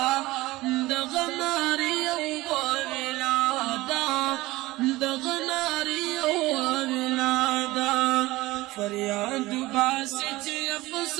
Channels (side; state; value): left; quieter; 19.3 dB